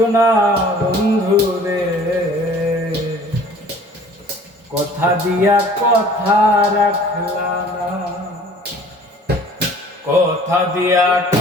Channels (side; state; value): both; normal; correlation 0.50